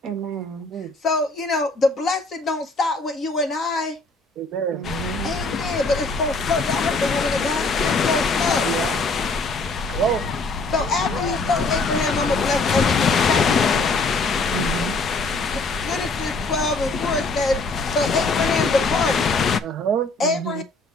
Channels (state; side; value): quieter; right; 3.3 dB